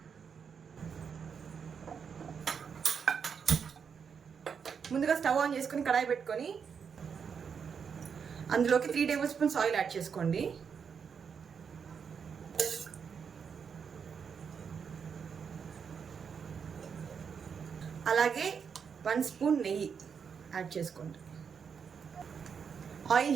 ముందుగా స్టవ్ ఆన్ చేసుకుని కడాయి పెట్టుకొని అందులోకి 3 టేబుల్ స్పూన్స్ ఆయిల్ యాడ్ చేసుకోండి. అలాగే 1 స్పూన్ నెయ్యి యాడ్ చేసుకోండి. ఆయిల్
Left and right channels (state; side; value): quieter; left; 6.6 dB